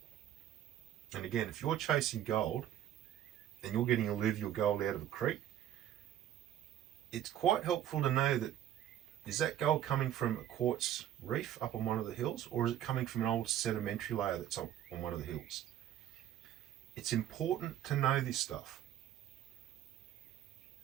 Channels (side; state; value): left; quieter; 11.4 dB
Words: And again, if you're chasing gold and you're getting alluvial gold out of a creek, it's quite helpful to know that, is that gold coming from a quartz reef up on one of the hills, or is it coming from an old sedimentary layer that's on one of the hills? It's important to know this stuff,